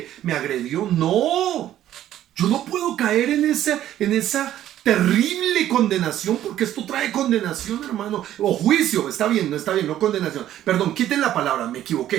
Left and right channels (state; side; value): quieter; left; 12.2 dB